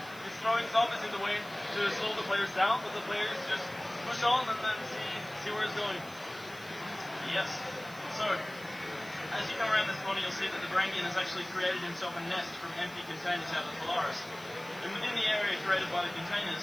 He's throwing zombies in the way to slow the players down, but the players just push on and then see where it's going. Yes. So, as you come around this corner, you'll see that the Varangian has actually created himself a nest from empty containers out of the Polaris. And within the area created by the containers,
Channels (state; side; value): noise; right; hiss, 20 dB below the sound